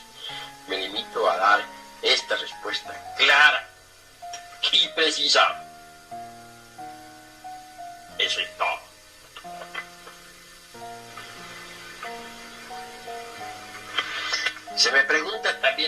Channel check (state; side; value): identical; both; correlation 1.00